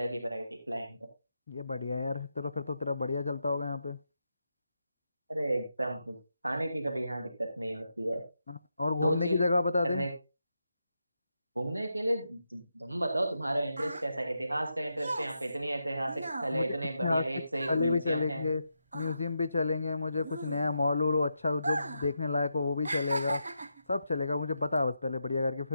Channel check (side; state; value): both; inverted; correlation -0.85